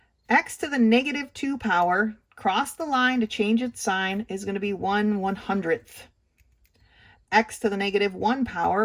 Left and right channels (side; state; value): both; identical; correlation 1.00